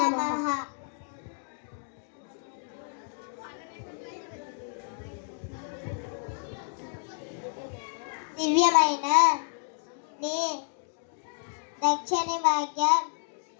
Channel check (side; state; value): right; silent; 58 dB below the other